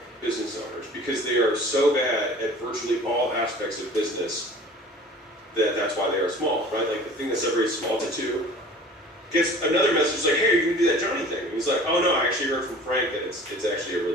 business owners, because they are so bad at virtually all aspects of business that's why they are small, right? Like the thing that separates small to 2 gets another message like, hey, you can do that Johnny thing. And he's like, oh no, I actually heard from Frank that it's actually a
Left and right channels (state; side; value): normal; both; correlation 0.45